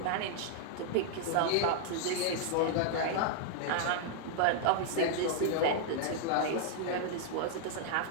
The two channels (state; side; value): different; both; correlation 0.00